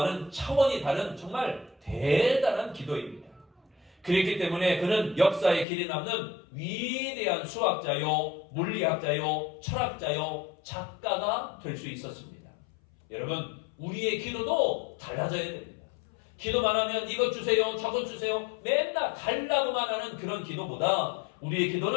차원이 다른 정말 대단한 기도입니다. 그렇기 때문에 그는 역사의 길이 남는 위대한 수학자요, 물리학자요, 철학자요, 작가가 될 수 있었습니다. 여러분, 우리의 기도도 달라져야 됩니다. 기도만 하면 이것 주세요, 저것 주세요, 맨날 달라고만 하는 그런 기도보다 우리의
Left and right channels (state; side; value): drops out; right; at 5.7 s